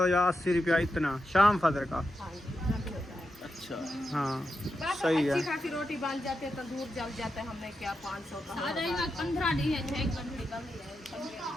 या 80 रुपया इतना शाम फजर का। हाँ, इतना भी होता है। अच्छा, हाँ बस सही है। अच्छी खासी रोटी बन जाती है, तंदूर जल जाता है। हमने क्या 500 का आ जाएगा 15 दिन है, 6 घंटे कमी है।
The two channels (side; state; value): both; normal; correlation 0.87